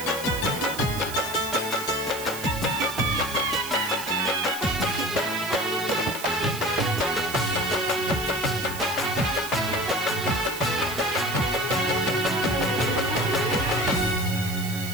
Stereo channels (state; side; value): noise; right; hiss, 10 dB below the sound